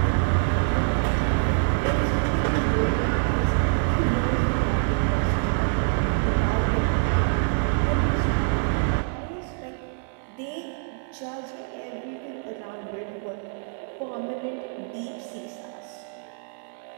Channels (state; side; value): silent; left; 61 dB below the other